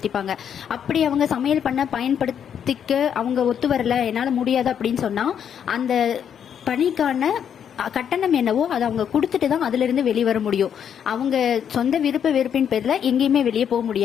அப்படி அவங்க சமையல் பண்ண பயன்படுத்திக்க அவங்க ஒத்து வரல, என்னால முடியாது அப்படின்னு சொன்னா அந்த பணிக்கான கட்டணம் என்னவோ அதை அவங்க கொடுத்துட்டு தான் அதுல இருந்து வெளியே வர முடியும். அவங்க சொந்த வெறுப்பின் பேர்ல எங்கேயுமே வெளியே போக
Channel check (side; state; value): right; quieter; 8.4 dB